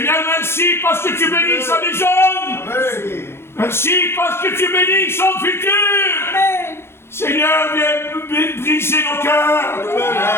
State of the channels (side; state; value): right; late; 0.12 ms